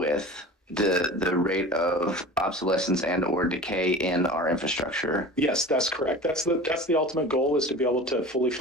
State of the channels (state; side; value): normal; both; correlation 0.36